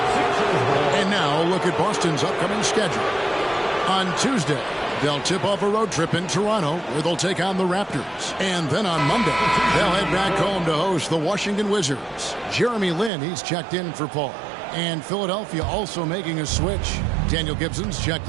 And now look at Boston's upcoming schedule. On Tuesday, they'll tip off a road trip in Toronto where they'll take on the Raptors. And then on Monday, they'll head back home to host the Washington Wizards. Jeremy Lin, he's checked in for Paul. And Philadelphia also making a switch. Daniel Gibson's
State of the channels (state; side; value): drops out; left; at 13.1 s